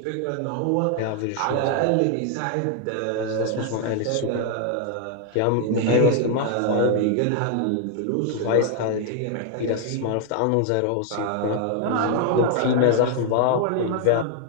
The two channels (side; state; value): both; different; correlation 0.00